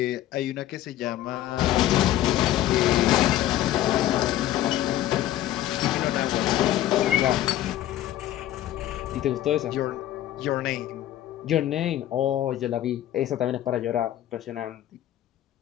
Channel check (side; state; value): right; quieter; 13.3 dB